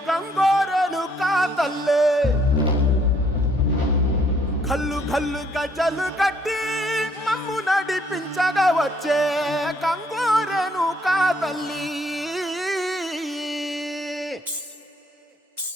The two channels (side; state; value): both; normal; correlation 0.66